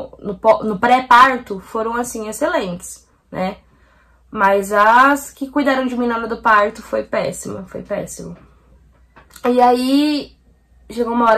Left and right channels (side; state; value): both; identical; correlation 1.00